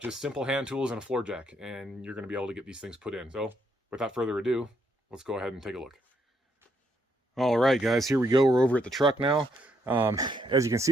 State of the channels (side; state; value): both; normal; correlation 0.74